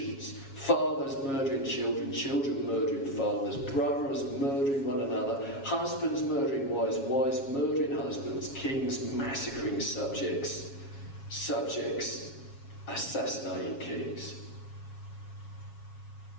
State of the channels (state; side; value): late; right; 7.3 ms